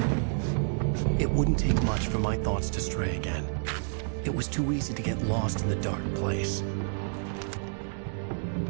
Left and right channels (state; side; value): silent; left; digital silence